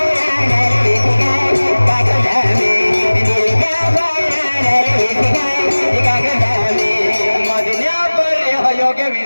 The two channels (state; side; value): inverted; both; correlation -1.00